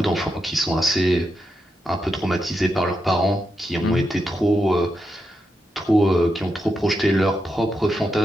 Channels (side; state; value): both; normal; correlation 0.85